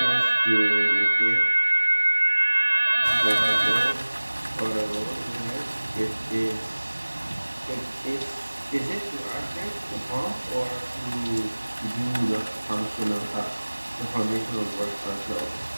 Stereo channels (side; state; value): both; inverted; correlation -1.00